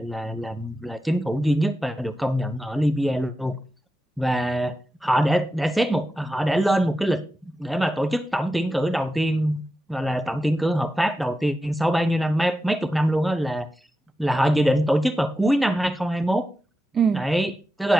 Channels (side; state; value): both; normal; correlation 0.92